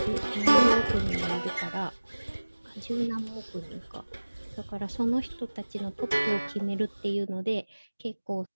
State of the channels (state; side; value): inverted; both; correlation -1.00